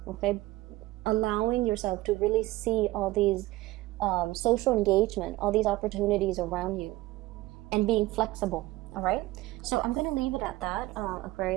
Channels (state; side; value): quieter; left; 18.5 dB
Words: Okay, allowing yourself to really see all these social engagement, all these opportunities around you, and being flexible. All right, so I'm gonna leave it at that.